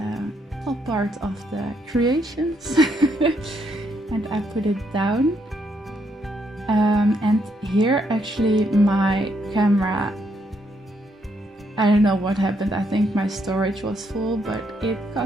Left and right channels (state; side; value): normal; both; correlation 0.74